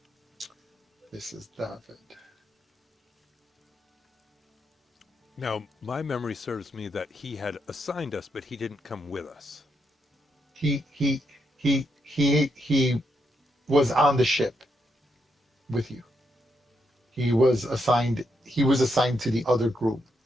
this is Daffod. Now, my memory serves me that he had assigned us, but he didn't come with us. He was on the ship with you. He was assigned to the other group,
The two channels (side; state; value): both; normal; correlation 0.80